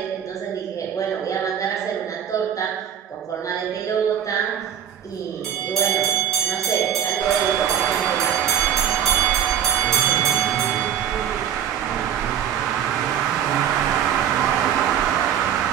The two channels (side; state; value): left; quieter; 9.2 dB